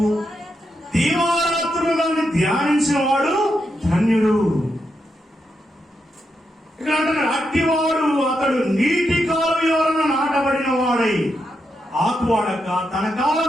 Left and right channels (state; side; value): normal; both; correlation 0.84